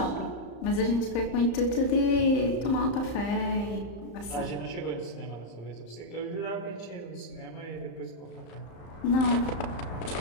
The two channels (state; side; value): late; right; 35 ms